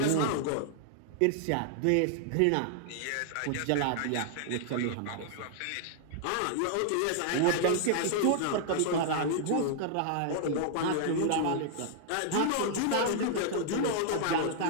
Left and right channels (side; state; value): both; different; correlation -0.01